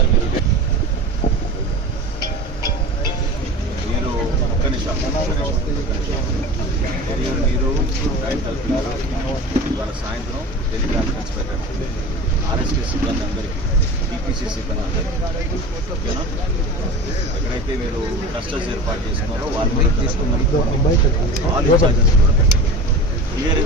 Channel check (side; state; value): both; normal; correlation 0.33